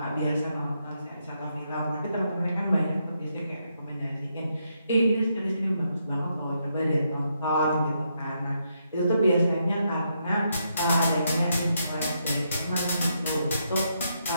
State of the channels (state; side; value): inverted; both; correlation -0.79